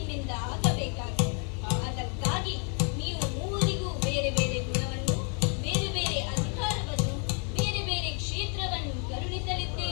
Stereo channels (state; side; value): quieter; right; 39.9 dB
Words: ಆಗಬೇಕಾಗಿದೆ. ಅದಕ್ಕಾಗಿ ನೀವು ಮೂವರಿಗೂ ಬೇರೆ ಬೇರೆ ಗುಣವನ್ನು, ಬೇರೆ ಬೇರೆ ಅಧಿಕಾರವನ್ನು, ಬೇರೆ ಬೇರೆ ಕ್ಷೇತ್ರವನ್ನು